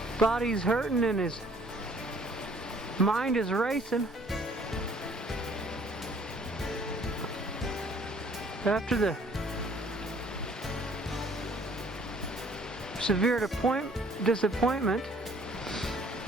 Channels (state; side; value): normal; both; correlation 0.58